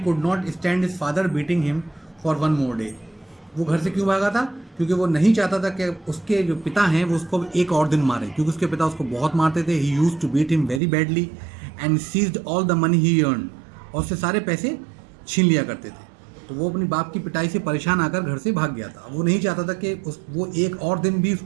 not stand his father beating him for one more day, वो घर से क्यों भागा था, क्योंकि वो नहीं चाहता था कि उसके जो पिता हैं वो उसको एक और दिन मारे, क्योंकि उसके पिता उसको बहुत मारते थे। He used to beat him very badly and seized all the money he earn, और उससे सारे पैसे छीन लिया करते थे। तो वो अपनी बाप की पिटाई से परेशान आकर घर से भाग गया था। वो नहीं चाहता था कि वो एक और दिन भी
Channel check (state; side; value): drops out; left; at 10.8 s